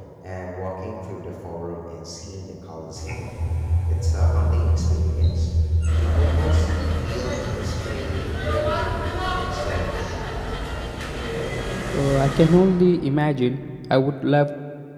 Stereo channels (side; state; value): both; identical; correlation 1.00